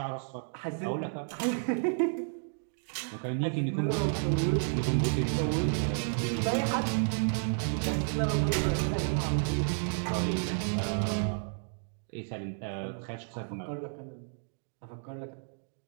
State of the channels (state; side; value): silent; left; digital silence